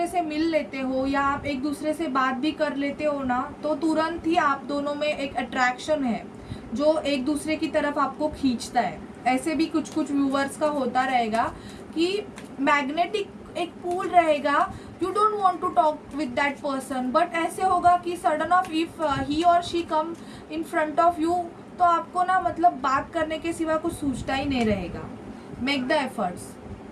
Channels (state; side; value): identical; both; correlation 1.00